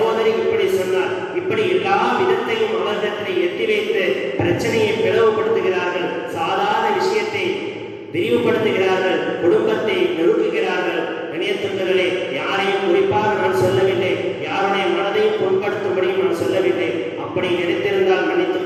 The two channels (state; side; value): identical; both; correlation 1.00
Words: இப்படி சொன்னார். இப்படி எல்லா விதத்தையும் அவர்களிடத்தில் எட்டி வைத்து பிரச்சனையை பிளவுபடுத்துகிறார்கள். சாதாரண விஷயத்தை விரிவுபடுத்துகிறார்கள். குடும்பத்தை நெருக்குகிறார்கள். கண்ணியத்துக்குரியவர்களே, யாரையும் குறிப்பாக நான் சொல்லவில்லை, யாருடைய மனதையும் புண்படுத்தும்படியும் நான் சொல்லவில்லை. அப்படி நினைத்திருந்தால் மன்னித்துக்